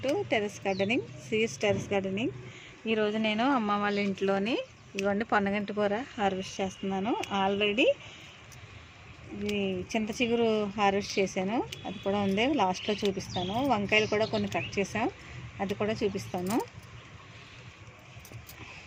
to terrace gardening, CS terrace gardening. ఈరోజు నేను అమ్మ వాళ్ళ ఇంట్లోని ఇవన్నీ పొన్నగంటి కూర హార్వెస్ట్ చేస్తున్నాను. ఆల్రెడీ ఇది చింత చిగురు హార్వెస్ట్ చేశాను, అది కూడా ఉంది, లాస్ట్లో చూపిస్తాను. వంకాయలు కూడా కొన్ని కట్ చేసాం, అది కూడా చూపిస్తాను.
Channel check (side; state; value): both; identical; correlation 1.00